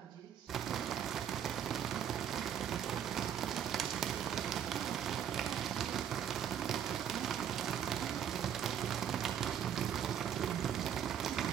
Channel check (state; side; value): quieter; left; 9.1 dB